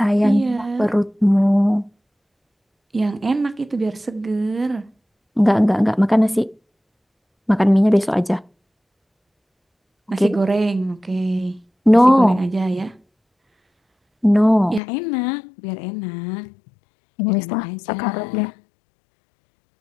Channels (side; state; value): right; drops out; at 14.8 s